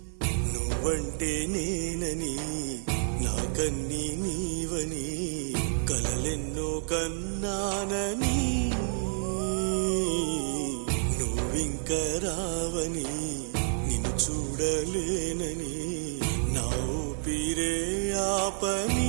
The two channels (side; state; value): left; silent; digital silence